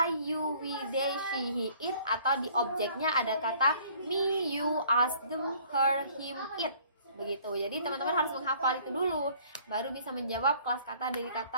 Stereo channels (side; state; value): both; inverted; correlation -0.56